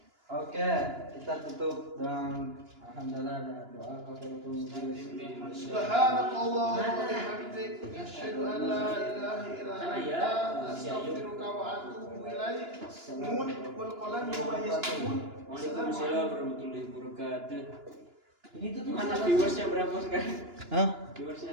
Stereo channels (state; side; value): late; left; 2.9 ms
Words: Oke, kita tutup dengan alhamdulillah dan doa kafaratul majlis. Subhanakallah wa bihamdik asyhadu an la ilaha illa Sana ya. anta astaghfiruka wa atubu ilaik. Nun wal qalam wa ma yasturun. Waalaikumsalam warahmatullahi wabarakatuh. Ini tuh Gimana viewersnya berapa sekarang? Hah? Viewersnya